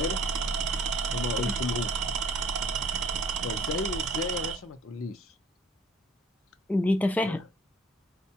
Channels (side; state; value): both; normal; correlation 0.54